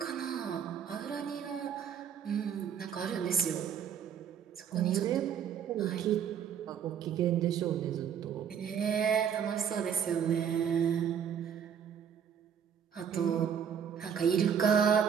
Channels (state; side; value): quieter; left; 8.1 dB